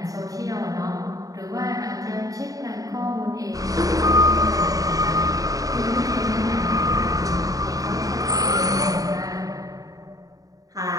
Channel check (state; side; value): late; left; 0.17 ms